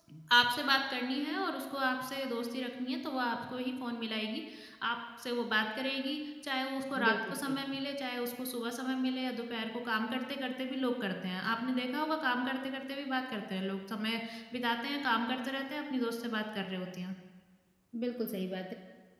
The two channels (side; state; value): both; identical; correlation 1.00